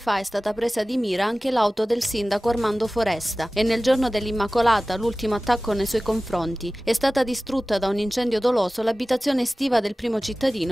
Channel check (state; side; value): normal; both; correlation 0.97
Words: è stata presa di mira anche l'auto del sindaco Armando Foresta e nel giorno dell'Immacolata, l'ultimo attacco nei suoi confronti, è stata distrutta da un incendio doloso l'abitazione estiva del primo